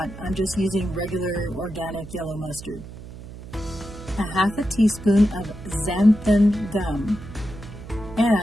I'm just using regular organic yellow mustard. A half a teaspoon of xanthan gum,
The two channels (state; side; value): noise; right; hum, 14 dB below the sound